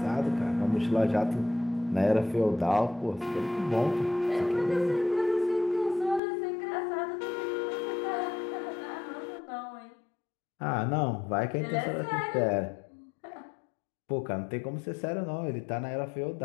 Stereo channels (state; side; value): drops out; right; at 6.2 s